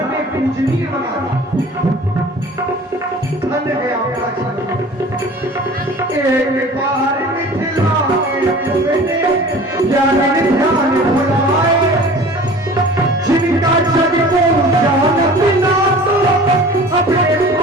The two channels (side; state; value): both; normal; correlation 0.43